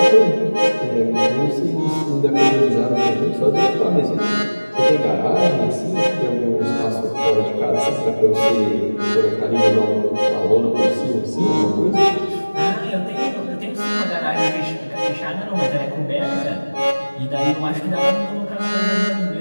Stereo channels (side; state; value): both; inverted; correlation -1.00